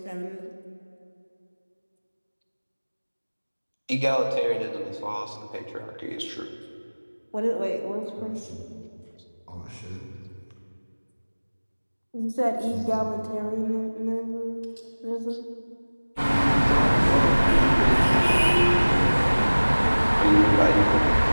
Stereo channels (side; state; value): both; inverted; correlation -1.00